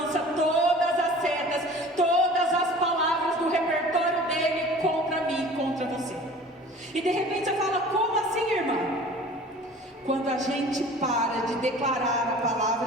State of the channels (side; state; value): both; normal; correlation 0.44